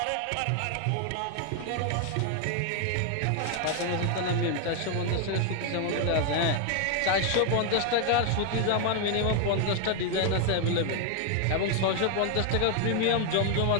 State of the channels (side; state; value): both; different; correlation 0.00